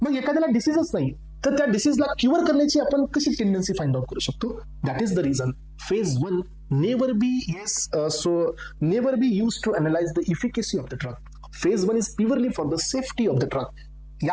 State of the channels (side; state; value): both; identical; correlation 1.00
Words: मग एखाद्याला डिसीजच नाही तर त्या डिसीजला क्युअर करण्याची आपण कशी टेंडन्सी फाइंड आउट करू शकतो. That is the reason phase 1 never be use to analyse the efficacy of the drug. Phase 1 is purely for the safety of the drug.